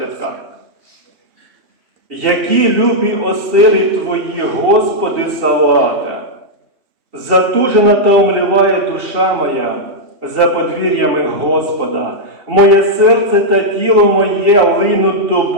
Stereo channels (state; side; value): late; left; 2.7 ms